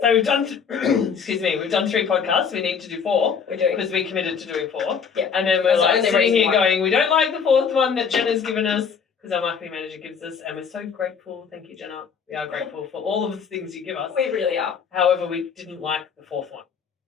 we've done, we've done 3 podcasts. We need to do 4 We're doing. because we committed to doing 4. Yeah. And then we're That's the like only sitting here reason why. going, we don't like the 4th one that Jenna's given us because our marketing manager gives us, and we're so grateful. Thank you, Jenna. We are grateful for all of the things you give us. We really are. However, we didn't like the 4th one.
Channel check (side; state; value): right; quieter; 6.5 dB